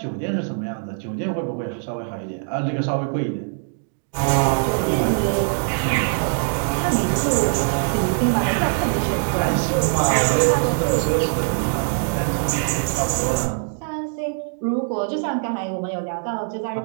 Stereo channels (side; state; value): left; silent; 64 dB below the other